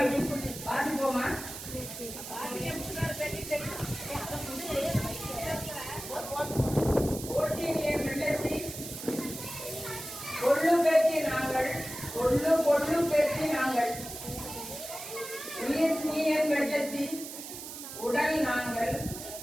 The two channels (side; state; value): right; noise; hiss, 10 dB below the sound